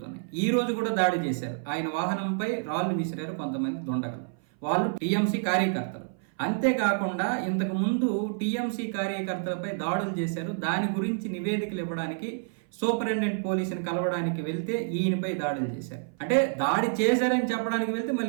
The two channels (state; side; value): silent; left; 57 dB below the other